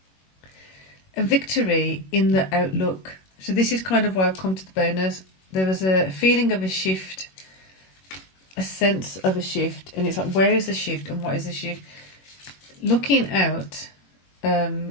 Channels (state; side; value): late; right; 21 ms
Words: A victory in the outlook. So this is kind of why I've come to the bonus. There was a feeling of a shift, a sense of a shift, and it's like, where is the shift and what is the shift? Looking out,